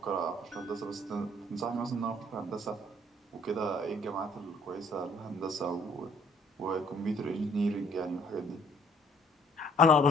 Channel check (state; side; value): normal; both; correlation 0.60